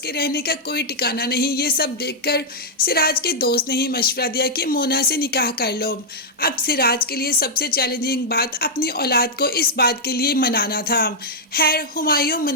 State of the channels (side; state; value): both; normal; correlation -0.05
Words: रहने का कोई ठिकाना नहीं। ये सब देखकर सिराज के दोस्त ने ही मशवरा दिया कि मोना से निकाह कर लो। अब सिराज के लिए सबसे चैलेंजिंग बात अपनी औलाद को इस बात के लिए मनाना था। खैर हुमायूं